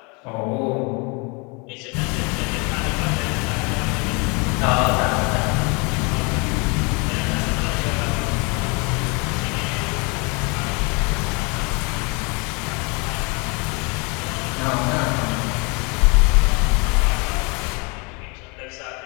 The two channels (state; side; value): quieter; right; 31.0 dB